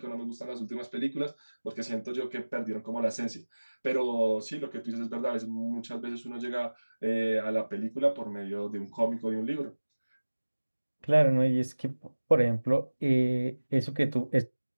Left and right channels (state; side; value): inverted; both; correlation -1.00